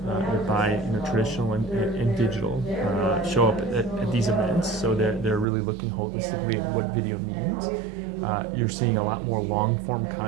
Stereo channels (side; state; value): left; drops out; at 5.5 s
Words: that buy traditional and digital show up at these events, so they're really looking holistically at what video means. You're seeing a lot more long-form